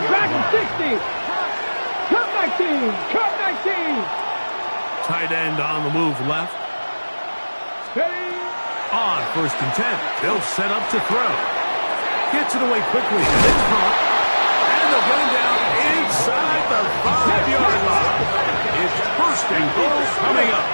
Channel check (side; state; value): both; inverted; correlation -1.00